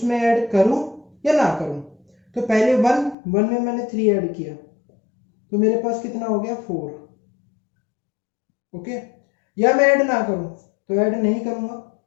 ऐड करूं या ना करूं। तो पहले वन में मैंने 3 ऐड किया तो मेरे पास कितना हो गया 4। ओके, या मैं ऐड ना करूं, तो ऐड नहीं करूंगा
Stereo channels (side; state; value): right; drops out; at 3.2 s